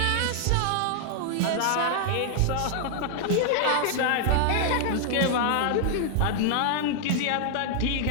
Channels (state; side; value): different; both; correlation 0.00